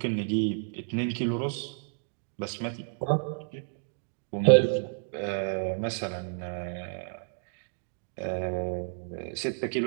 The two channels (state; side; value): silent; left; digital silence